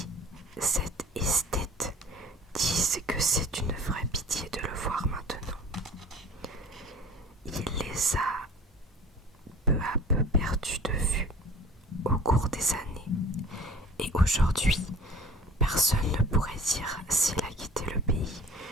cet esthète, disent que c'est une vraie pitié de le voir maintenant. Il les a peu à peu perdus de vue au cours des années, et aujourd'hui, personne ne pourrait dire s'il a quitté le pays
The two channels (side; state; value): both; normal; correlation 0.44